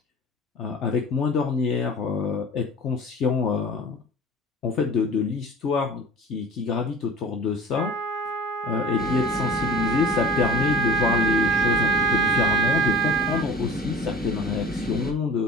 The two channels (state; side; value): normal; both; correlation 0.41